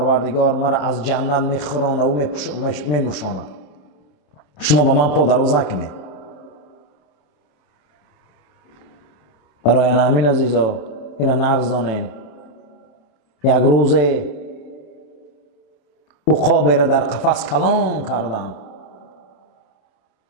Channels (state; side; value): late; right; 27 ms